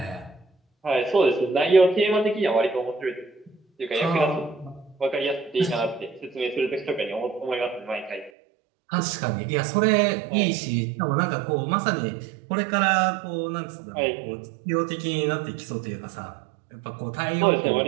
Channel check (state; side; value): drops out; left; at 8.3 s